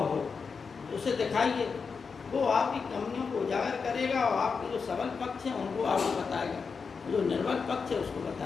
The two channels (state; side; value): quieter; right; 5.3 dB